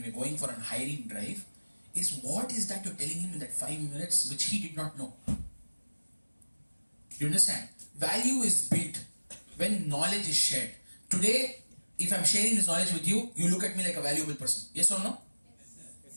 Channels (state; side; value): inverted; both; correlation -1.00